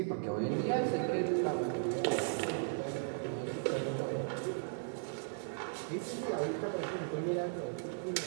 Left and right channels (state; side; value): silent; left; digital silence